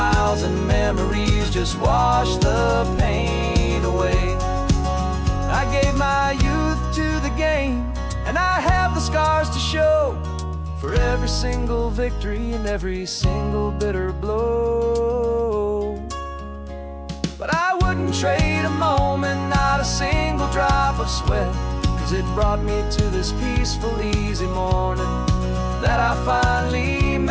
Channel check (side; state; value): both; identical; correlation 1.00